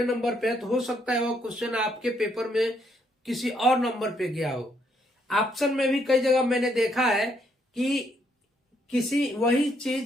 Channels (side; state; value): both; normal; correlation 0.72